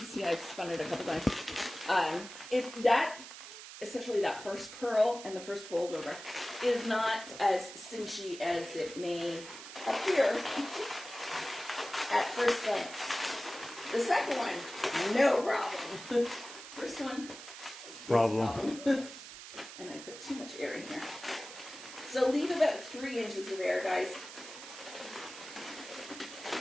see I've spun it a couple times. If that, especially that first pearl and the first fold over, is not as cinchy as it may appear at first glance. The second one, no problem. First one, Problem. And I put too much air in here. So leave about 3 inches of air, guys.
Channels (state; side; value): noise; right; hiss, 13 dB below the sound